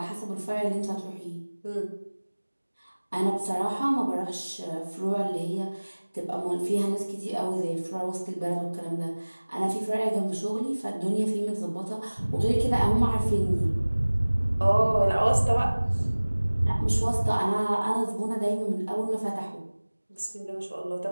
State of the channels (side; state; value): both; inverted; correlation -1.00